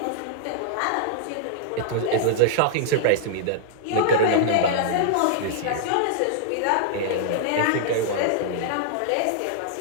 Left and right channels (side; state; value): both; different; correlation -0.01